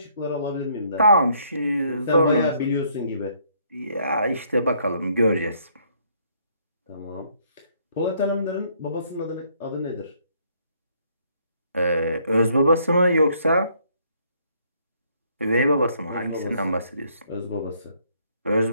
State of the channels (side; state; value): both; inverted; correlation -0.67